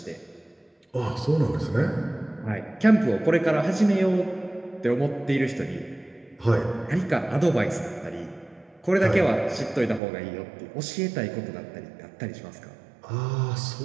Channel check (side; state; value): left; drops out; at 10.0 s